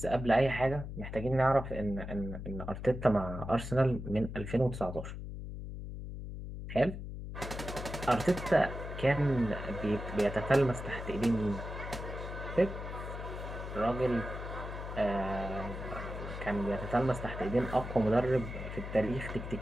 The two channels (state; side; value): noise; left; hum, 8 dB below the sound